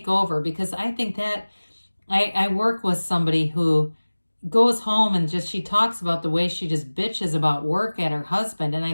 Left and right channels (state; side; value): inverted; both; correlation -1.00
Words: over, because I think that I work with somebody who goes home and she talks about the way she just bitches about work at her husband. And